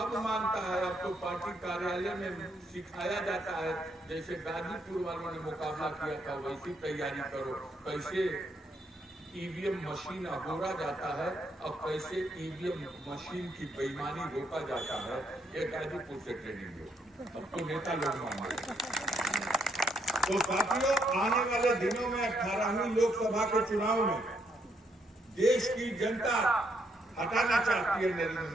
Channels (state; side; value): normal; both; correlation 0.74